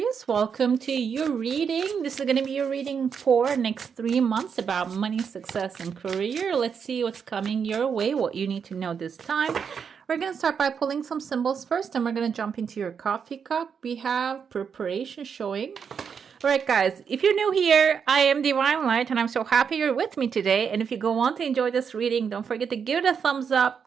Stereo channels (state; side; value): quieter; left; 6.7 dB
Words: Welcome to your reading. This is going to be your reading for next 3 months about money, success, and career. Let's see what's coming your way, what you need to know this time. We're going to start by pulling some symbols first, and we're going to jump into your coffee cup. We have preparation showing. All right, guys, if you're new here, I am Divine Light, and I'm so happy you're with me today. And if you go on to enjoy this reading, don't forget to give it a thumbs